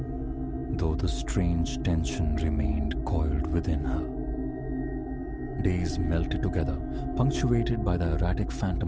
though the strange tension remained coiled within her. Days melted together, punctuated by the erratic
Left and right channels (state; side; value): identical; both; correlation 1.00